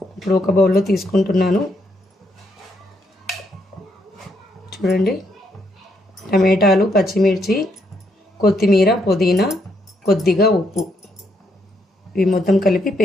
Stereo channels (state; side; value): normal; both; correlation 0.76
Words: ఇప్పుడు ఒక బౌల్లో తీసుకుంటున్నాను. చూడండి, టమాటాలు, పచ్చిమిర్చి, కొత్తిమీర, పుదీనా, కొద్దిగా ఉప్పు, ఇవి మొత్తం కలిపి